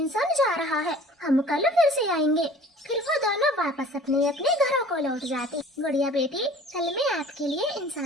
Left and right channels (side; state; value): both; normal; correlation 0.48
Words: जा रहा है, हम कल फिर से आएंगे। फिर वो दोनों वापस अपने अपने घरों को लौट जाती। गुड़िया बेटी, कल मैं आपके लिए